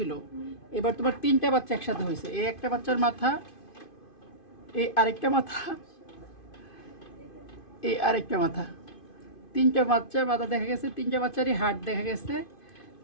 এবার তোমার 3টা বাচ্চা একসাথে হয়েছে। এই একটা বাচ্চার মাথা, এই আরেকটা মাথা, এই আরেকটা মাথা, 3টা বাচ্চার মাথা দেখা গেছে। 3টা বাচ্চারই হার্ট দেখা গেছে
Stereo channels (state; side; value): late; right; 2.5 ms